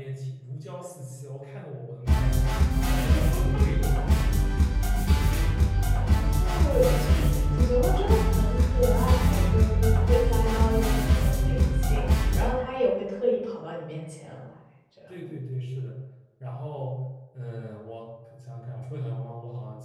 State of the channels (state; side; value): identical; both; correlation 1.00